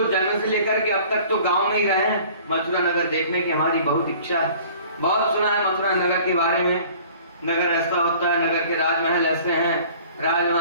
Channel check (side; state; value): both; inverted; correlation -0.49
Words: जन्म से लेकर के अब तक तो गांव में ही रहे हैं, मथुरा नगर देखने की हमारी बहुत इच्छा है, बहुत सुना है मथुरा नगर के बारे में, नगर ऐसा होता है, नगर के राजमहल ऐसे हैं,